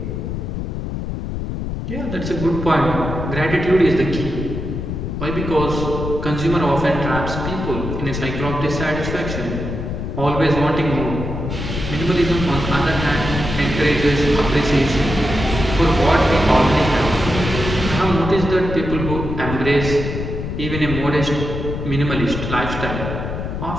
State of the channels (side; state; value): left; noise; rumble, 5 dB below the sound